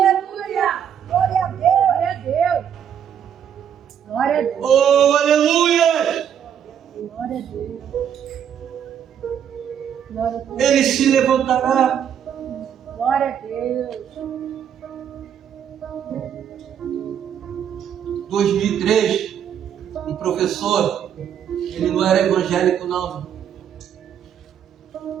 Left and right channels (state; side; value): quieter; left; 8.8 dB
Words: Glória a Deus. Glória a Deus. Glória a Deus. Oh, aleluia! Glória a Deus. Glória a Deus. Ele se levantará. Glória a Deus. 2003, um professor, ele não era evangélico não,